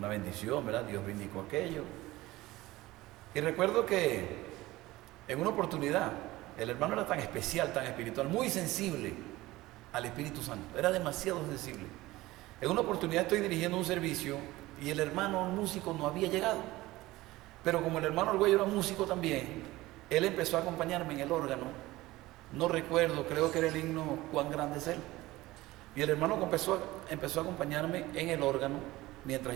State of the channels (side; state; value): left; quieter; 18.4 dB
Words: bendición, ¿verdad? Dios bendicó aquello. Y recuerdo que en una oportunidad, el hermano era tan especial, tan espiritual, muy sensible al Espíritu Santo, era demasiado sensible. En una oportunidad estoy dirigiendo un servicio y el hermano músico no había llegado, pero como el hermano Argüello era músico también, él empezó a acompañarme en el órgano, no recuerdo, creo que era el himno Cuán grande es Él, y el hermano empezó a acompañarme en el órgano